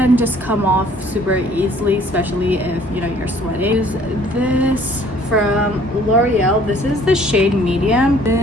just come off super easily, especially if you know you're sweating. Use this from L'Oreal. This is the shade medium.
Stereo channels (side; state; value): both; normal; correlation 0.57